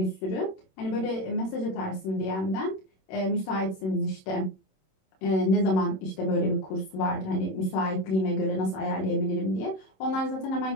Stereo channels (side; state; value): right; late; 26 ms